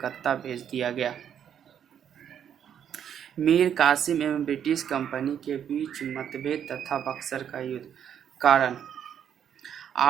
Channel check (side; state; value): left; quieter; 9.0 dB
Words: भेज दिया गया। मीर कासिम एवं ब्रिटिश कंपनी के बीच मतभेद तथा बक्सर का युद्ध। कारण